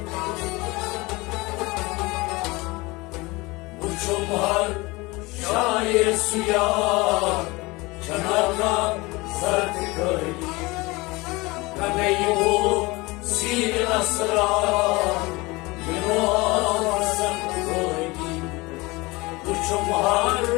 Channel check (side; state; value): right; quieter; 23.4 dB